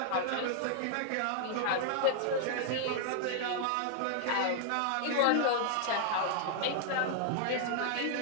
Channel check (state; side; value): different; both; correlation 0.00